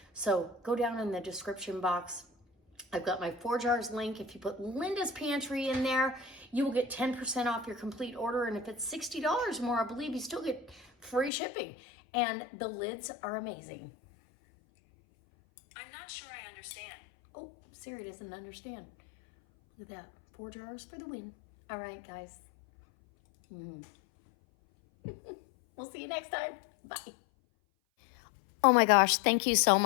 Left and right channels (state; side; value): drops out; right; at 11.3 s